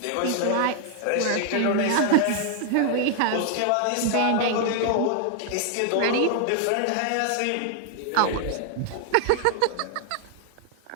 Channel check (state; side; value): different; both; correlation 0.00